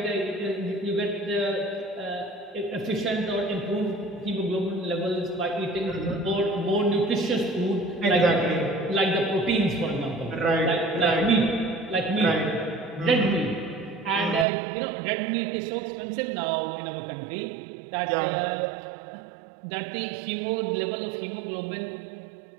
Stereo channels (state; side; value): drops out; left; at 14.5 s